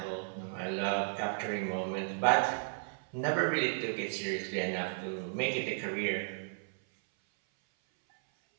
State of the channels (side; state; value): left; silent; 55 dB below the other